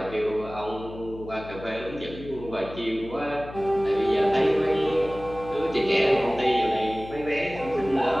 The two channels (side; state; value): left; noise; hum, 14 dB below the sound